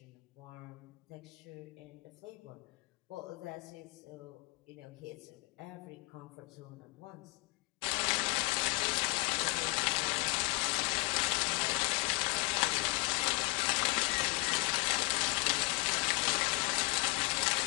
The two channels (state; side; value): quieter; right; 24.7 dB